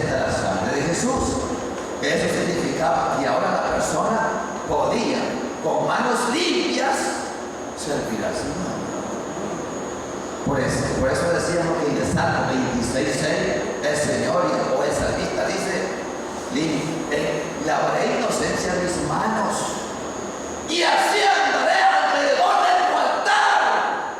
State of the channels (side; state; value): both; identical; correlation 1.00